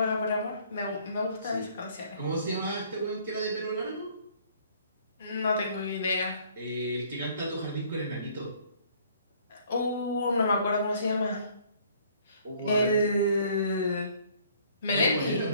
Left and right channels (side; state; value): both; inverted; correlation -0.59